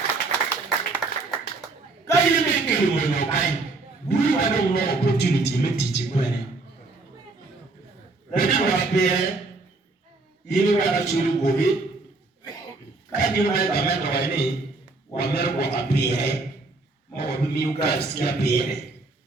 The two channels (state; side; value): quieter; left; 3.5 dB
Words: Kaya mekelu mwenye kai. Bulu wado no opportunity metichi kwene. Lati wapere, yini wada churu gobe. Kaya mwaya kamendo wane, wamero kwa kapere. Mawabimi uka sikia pere.